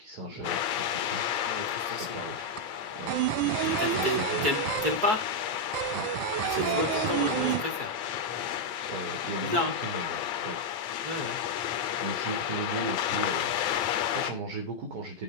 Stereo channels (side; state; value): left; late; 4.6 ms